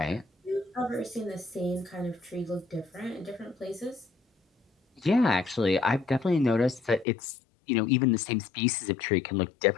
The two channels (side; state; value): right; drops out; at 7.1 s